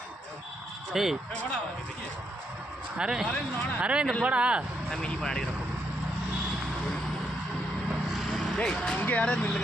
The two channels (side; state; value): both; normal; correlation 0.78